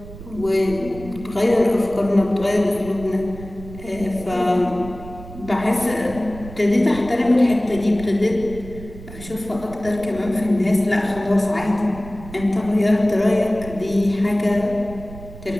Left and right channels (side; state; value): right; noise; rumble, 14 dB below the sound